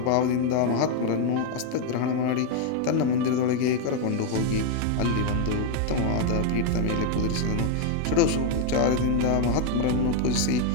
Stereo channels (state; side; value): different; both; correlation 0.01